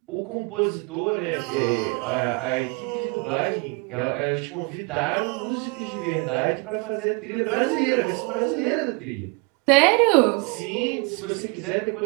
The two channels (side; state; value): left; quieter; 31.4 dB